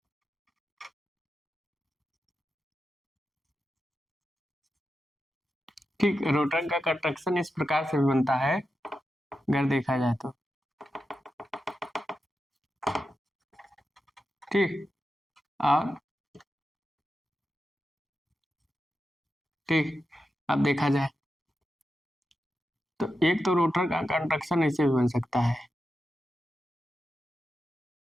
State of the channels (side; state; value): both; normal; correlation 0.90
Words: ठीक, रोटर का कंस्ट्रक्शन इस प्रकार से भी बनता है अगर देखा जाए तो। ठीक, और ठीक, अब देखा जाए तो एक तो रोटर का कंस्ट्रक्शन ऐसे भी बन सकता है।